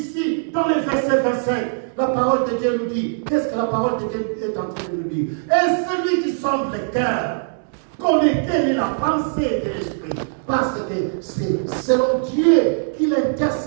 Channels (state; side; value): silent; left; 64 dB below the other